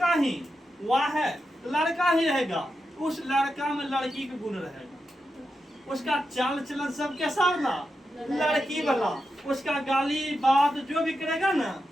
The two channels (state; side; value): normal; both; correlation 0.88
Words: ही, वाह है तो लड़का ही रहेगा। उस लड़का में लड़की के गुण रहेगा, उसका चाल चलन सब कैसा ना लड़की वाला, उसका गाली बात जो भी करेगा ना